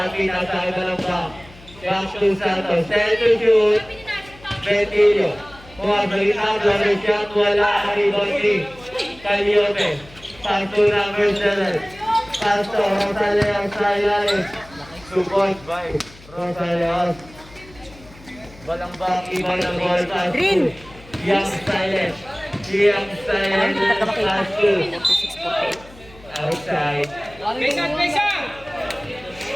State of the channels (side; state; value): left; noise; hum, 22 dB below the sound